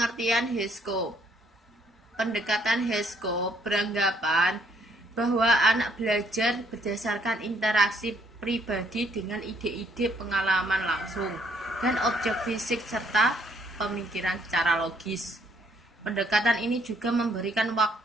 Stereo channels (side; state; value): both; normal; correlation 0.67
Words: HISCOP. Pendekatan HISCOP beranggapan bahwa anak belajar berdasarkan interaksi pribadi dengan ide-ide pengalaman langsung dan objek fisik serta pemikiran secara logis. Pendekatan ini juga memberikan